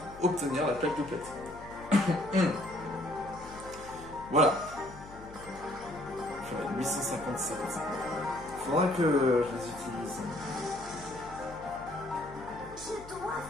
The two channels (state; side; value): noise; left; hum, 17 dB below the sound